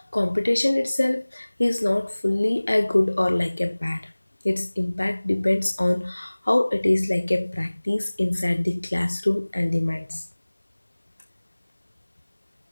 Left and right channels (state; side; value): inverted; both; correlation -1.00